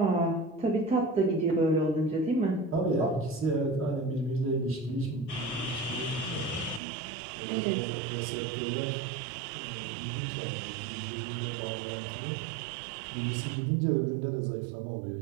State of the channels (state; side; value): drops out; left; at 6.8 s